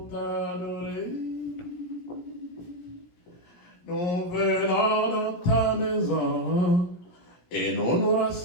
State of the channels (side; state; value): right; late; 17 ms